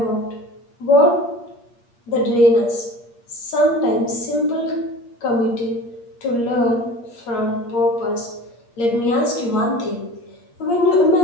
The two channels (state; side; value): late; right; 8.5 ms